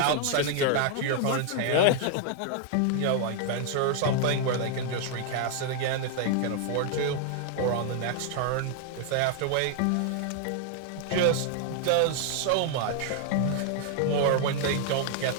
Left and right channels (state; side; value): different; both; correlation 0.00